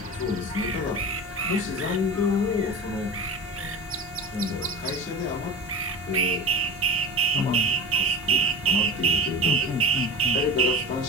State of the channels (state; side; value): normal; both; correlation 0.30